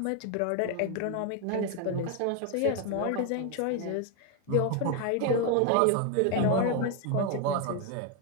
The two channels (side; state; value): both; different; correlation 0.01